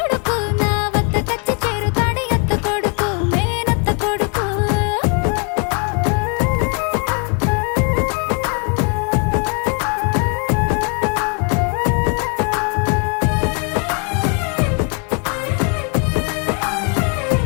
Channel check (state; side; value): quieter; right; 37.8 dB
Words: నా వద్ద కచ్చి చేరుతాడు అత్త కొడుకు మేనత్త కొడుకు